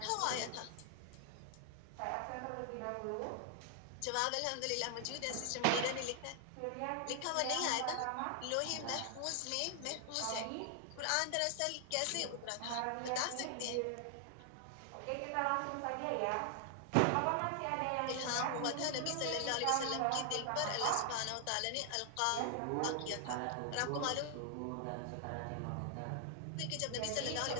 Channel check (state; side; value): different; both; correlation 0.00